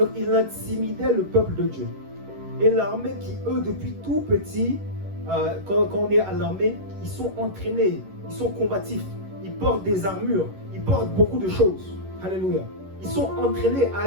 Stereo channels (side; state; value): left; late; 11 ms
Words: ils intimidaient le peuple de Dieu. Et l'armée qui, eux, depuis tout petit, quand on est à l'armée, ils sont entraînés, ils sont combatifs, ils portent des armures, ils portent beaucoup de choses. Alléluia. Ils sont entraînés à